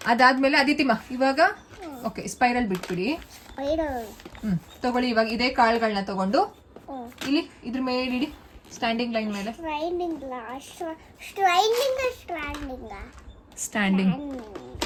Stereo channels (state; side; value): identical; both; correlation 1.00